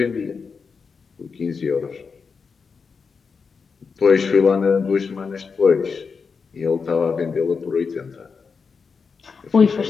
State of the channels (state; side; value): quieter; right; 5.3 dB